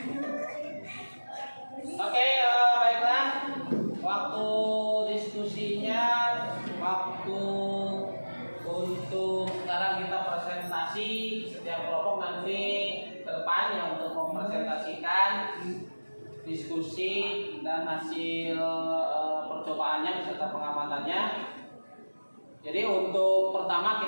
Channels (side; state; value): both; inverted; correlation -1.00